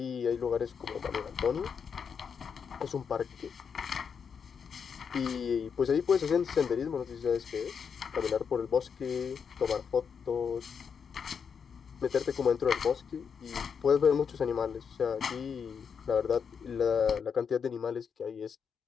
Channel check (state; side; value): quieter; right; 6.6 dB